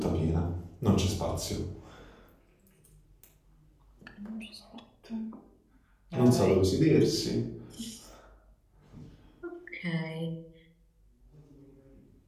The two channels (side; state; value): both; identical; correlation 1.00